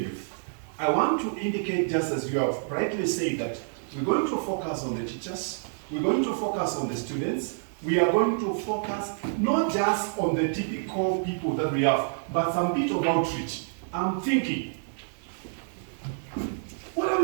with? I want to indicate, just as you have rightly said, that we're going to focus on the teachers, we're going to focus on the students, we are going to focus not just on the typical people that we have, but some bit of outreach. I'm thinking, what are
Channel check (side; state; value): left; silent; 59 dB below the other